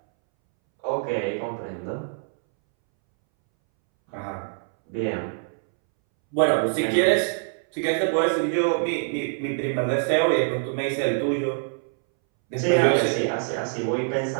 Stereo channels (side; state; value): left; silent; 62 dB below the other